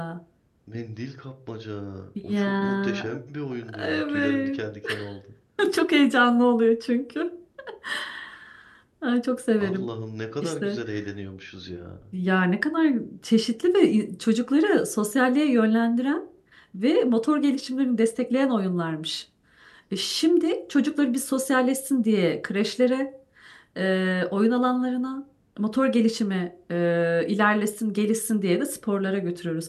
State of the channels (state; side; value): identical; both; correlation 1.00